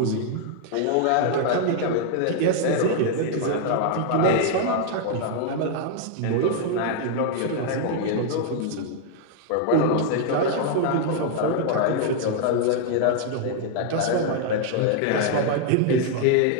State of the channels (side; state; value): both; different; correlation 0.00